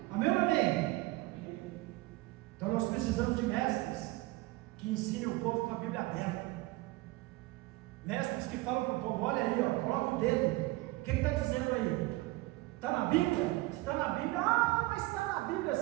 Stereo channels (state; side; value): quieter; left; 20.5 dB